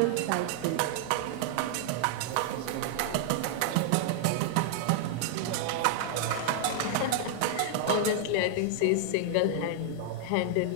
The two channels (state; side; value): different; both; correlation 0.00